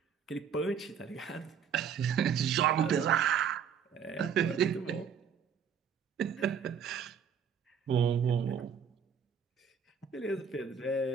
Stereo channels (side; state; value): left; quieter; 7.2 dB